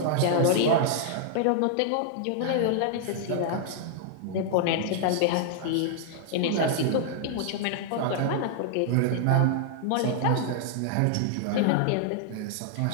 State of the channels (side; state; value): both; different; correlation 0.00